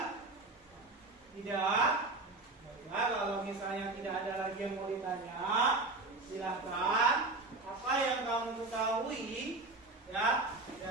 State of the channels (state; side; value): quieter; left; 3.2 dB